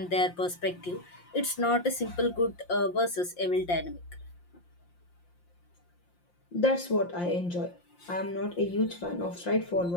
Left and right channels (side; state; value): right; late; 5.7 ms